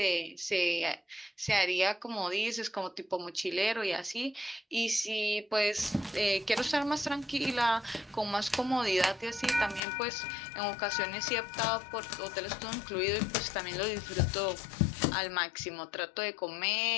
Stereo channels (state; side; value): drops out; right; at 9.8 s